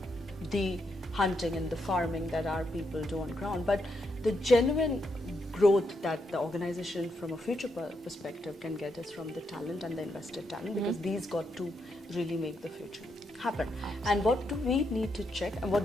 the hunting and the farming that our people do on ground. But the genuine growth that the organization from a future perspective can get is from the talent and the invested talent, because these got to really make the future happen. And what do we need to check, and what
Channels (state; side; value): normal; both; correlation 0.80